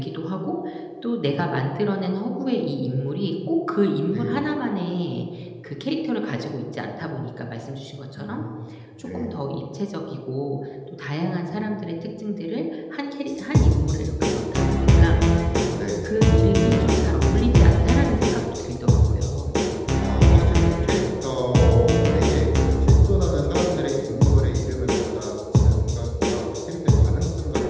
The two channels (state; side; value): identical; both; correlation 1.00